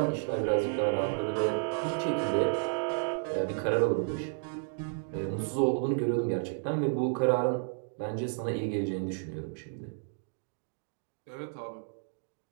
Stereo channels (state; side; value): silent; left; digital silence